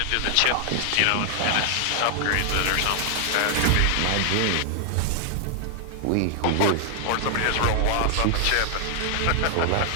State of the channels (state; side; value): different; both; correlation 0.00